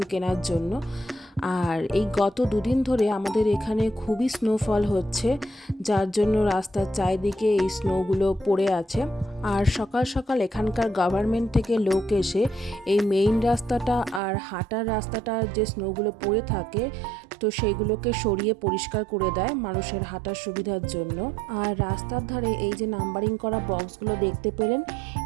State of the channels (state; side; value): drops out; left; at 14.2 s